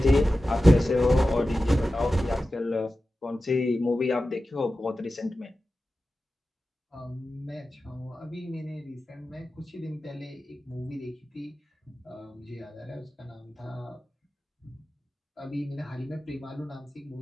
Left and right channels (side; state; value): both; normal; correlation 0.94